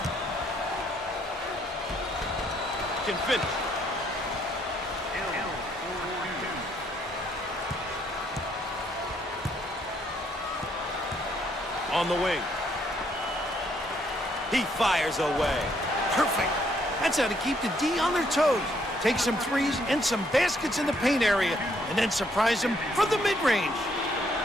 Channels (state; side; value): normal; both; correlation 0.70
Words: Can finish. On the wing. He fires away. Perfect. That's how to keep the D on their toes. Take some threes and some baskets in the paint area, and then surprise them from the mid-range.